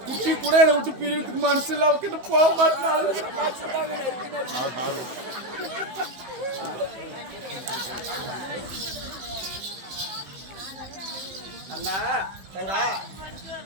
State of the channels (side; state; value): left; late; 16 ms